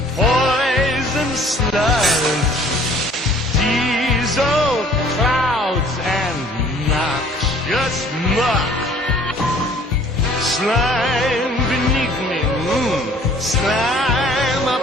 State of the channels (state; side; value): normal; both; correlation 0.54